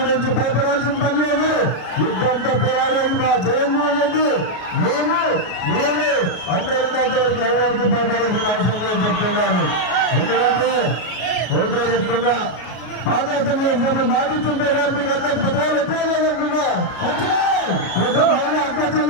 భయపడాల్సిన పని లేదు. యుద్ధంతో పోరాడేది మా జగన్మోహన్ రెడ్డి. మేము అందరికంతవరకు ఎవరికి భయపడాల్సిన అవసరం లేదు చెప్తున్నాను. ఎందుకంటే ఒకటే చెప్తున్నా, పాదయాత్ర చేసినప్పుడు మాటిస్తుంటే కానీ మీకు అందరికి పదవాళ్ళు ఎక్కడ లేదంటున్నా.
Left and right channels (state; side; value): late; right; 33 ms